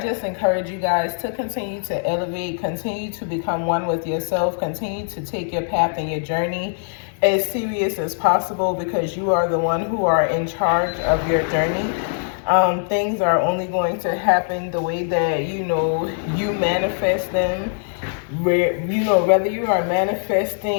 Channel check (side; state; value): right; silent; 64 dB below the other